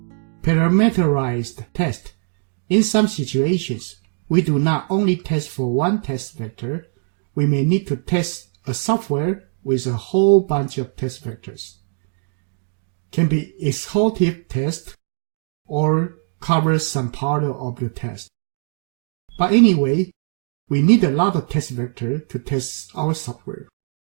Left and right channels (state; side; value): silent; left; digital silence